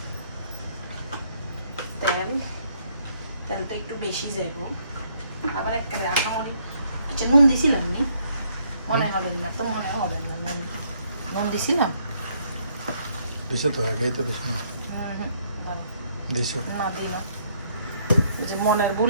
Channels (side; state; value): both; inverted; correlation -0.69